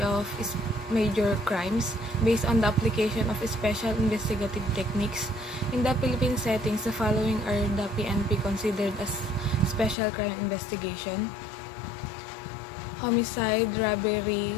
of major crimes based on the application of special investigative techniques. In the Philippine settings, the following are the PNP considered as special crime investigation: homicide, robbery,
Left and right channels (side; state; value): right; drops out; at 10.0 s